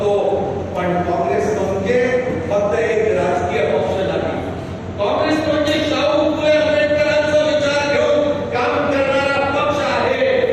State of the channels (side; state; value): both; identical; correlation 1.00